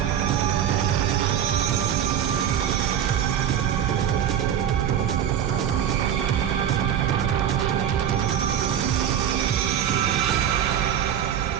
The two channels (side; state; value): left; quieter; 9.5 dB